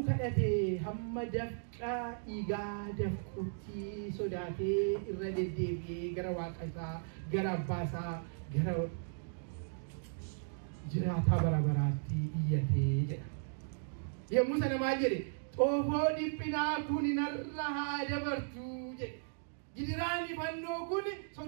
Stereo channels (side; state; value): left; silent; digital silence